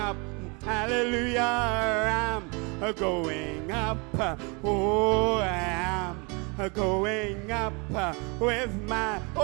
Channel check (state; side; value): quieter; left; 30.7 dB